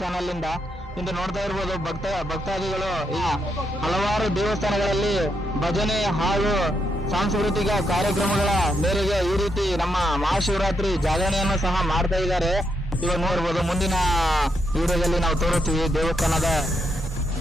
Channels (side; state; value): both; normal; correlation 0.80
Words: ಇಂದ. ಇಂದು ನೋಡ್ತಾ ಇರ್ಬೋದು ಭಕ್ತಾದಿಗಳು ಹಲವಾರು ದೇವಸ್ಥಾನಗಳಲ್ಲಿ ಭಜನೆ ಹಾಗೂ ಸಾಂಸ್ಕೃತಿಕ ಕಾರ್ಯಕ್ರಮಗಳ ಮೇರೆಗೆ ಈ ರೀತಿ ನಮ್ಮ ಮಹಾಶಿವರಾತ್ರಿ ಜಾಗರಣೆಯನ್ನು ಸಹ ಮಾಡ್ತಾ ಇದ್ದಾರೆ. ಇವಾಗ ನೋಡ್ಬೋದು, ಮುಂದಿನ ವಿಡಿಯೋದಲ್ಲಿ ನಾವು ತೋರುತ್ತೀವಿ ದೇವಸ್ಥಾನದ